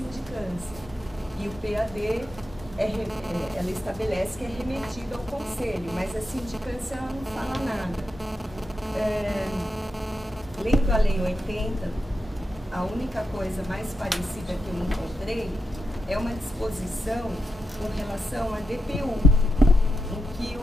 E o PAD, ela estabelece que é remetido ao conselho, mas a sindicância ela não fala nada. Lendo a Lei 80, a única coisa mais parecida que eu encontrei é uma disposição com relação à DPU, em que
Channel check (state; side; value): normal; both; correlation 0.86